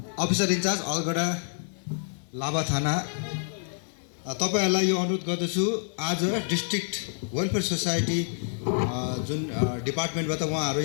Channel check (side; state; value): right; silent; digital silence